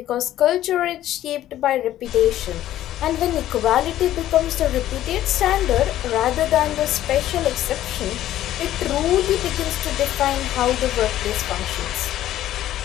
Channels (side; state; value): right; quieter; 13.1 dB